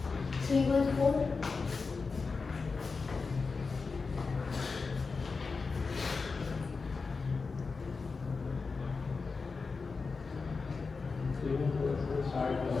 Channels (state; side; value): quieter; right; 4.5 dB